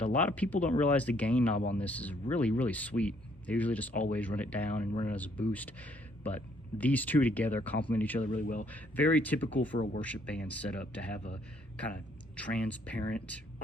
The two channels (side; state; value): both; normal; correlation 0.67